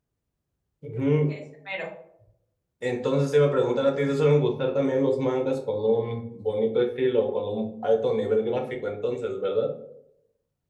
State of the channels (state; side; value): identical; both; correlation 1.00